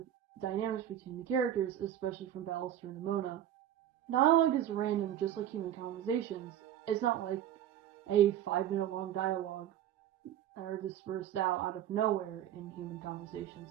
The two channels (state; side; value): quieter; left; 11.2 dB